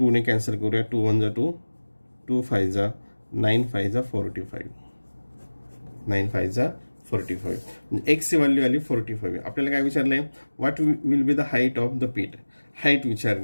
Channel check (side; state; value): both; inverted; correlation -1.00